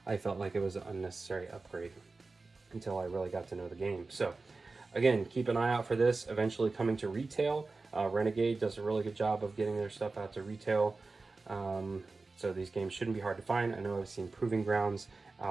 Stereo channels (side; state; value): left; quieter; 3.7 dB